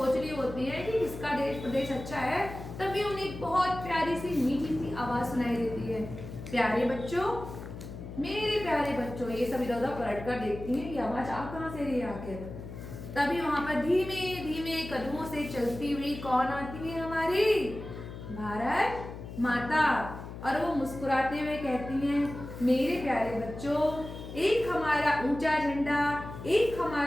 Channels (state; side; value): noise; left; hum, 11 dB below the sound